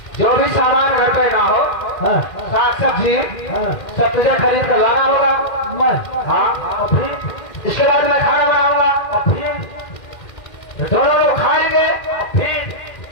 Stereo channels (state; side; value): late; right; 2.1 ms